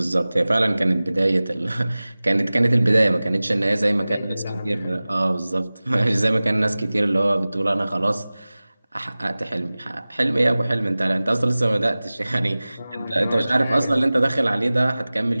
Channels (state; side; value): inverted; both; correlation -0.98